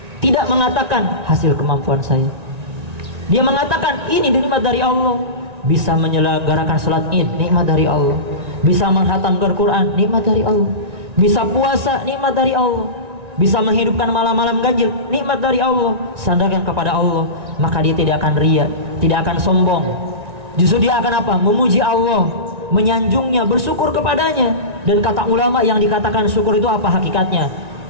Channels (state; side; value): late; left; 1.9 ms